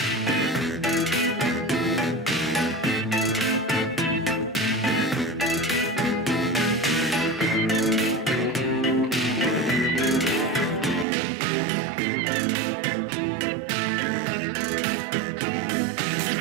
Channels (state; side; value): drops out; left; at 11.1 s